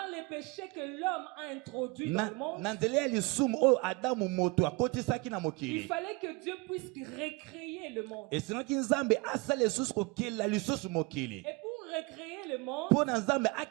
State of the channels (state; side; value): quieter; left; 24.9 dB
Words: les péchés que l'homme a introduits dans le monde, na nzela ya lisumu oyo Adamu moto akotisaki na il mokili. fallait que Dieu puisse recréer le monde. Esengaki Nzambe asala lisusu kokela lisusu mokili. Et pour recréer le monde, Mpo na Nzambe